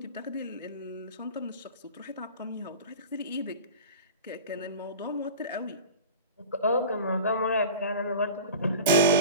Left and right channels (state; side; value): inverted; both; correlation -0.35